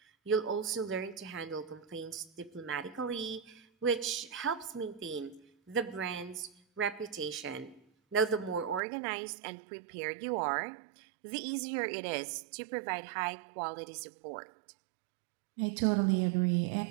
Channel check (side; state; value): left; drops out; at 8.8 s